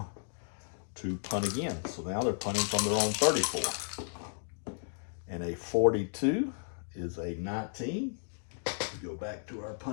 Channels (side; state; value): right; silent; digital silence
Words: to punt again. So now they're punting from their own 34. And a 42 is a 19. We go back to our